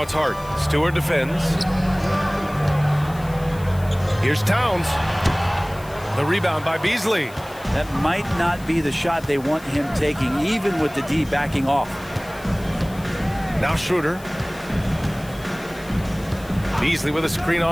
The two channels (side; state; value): left; noise; hiss, 21 dB below the sound